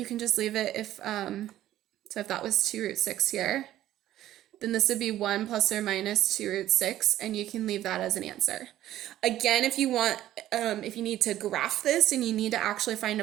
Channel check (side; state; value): left; quieter; 13.3 dB